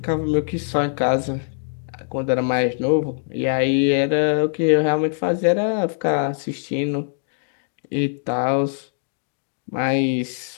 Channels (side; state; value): right; silent; digital silence